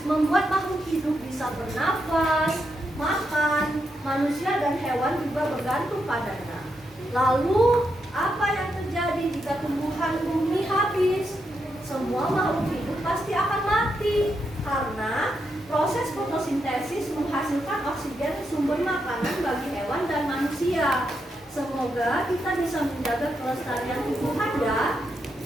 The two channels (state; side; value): normal; both; correlation 0.82